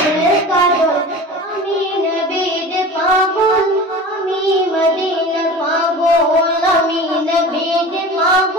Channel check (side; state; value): both; normal; correlation 0.36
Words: কাজল। আমি নবীর পাগল, আমি মদিনার পাগল, আমি নবীর